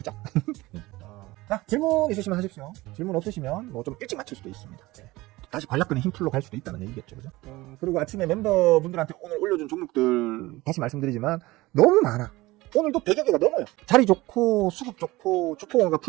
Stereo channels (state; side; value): quieter; left; 19.8 dB